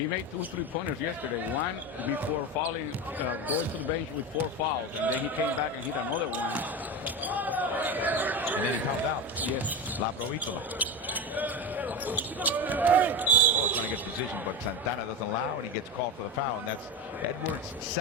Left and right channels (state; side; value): normal; both; correlation 0.21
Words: made 2 three-pointers yesterday. One before fouling, going to the bench with 4 fouls, and then he came back and hit another one. And then he fouled out. Yes. La Provítola. Oh, trying to get position, but Santana doesn't allow, and he gets called for the foul, and that's Edwards'